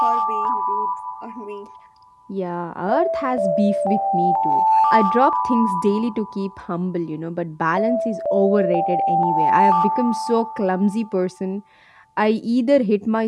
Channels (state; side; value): identical; both; correlation 1.00